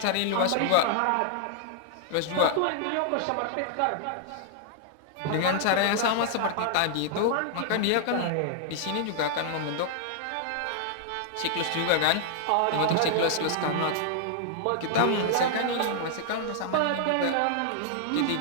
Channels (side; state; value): both; different; correlation -0.01